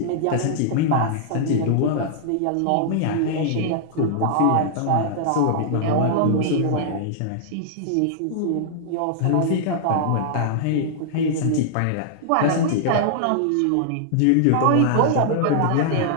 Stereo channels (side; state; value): both; different; correlation -0.01